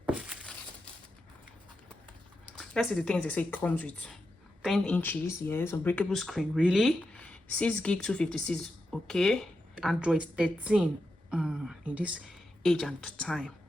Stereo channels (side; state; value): both; normal; correlation 0.88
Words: Let's see the things they say it comes with. 10 inches, yes. Unbreakable screen, really? 6 gig 256, okay. Android 13 in this age and time.